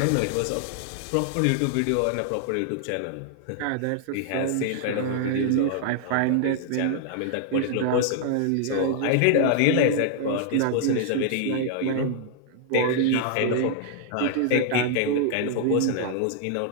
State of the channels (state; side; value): different; both; correlation 0.00